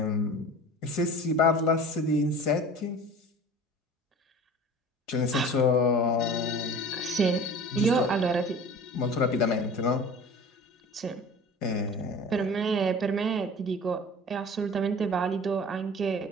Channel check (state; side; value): normal; both; correlation 0.40